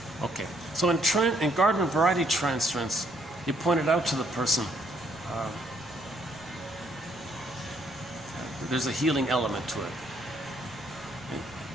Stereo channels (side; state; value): right; noise; rumble, 23 dB below the sound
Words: Okay, so in garden variety transference, you pointed out to the person there's a healing element to it.